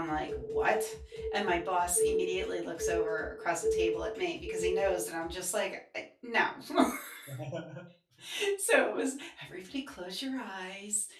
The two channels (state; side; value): identical; both; correlation 1.00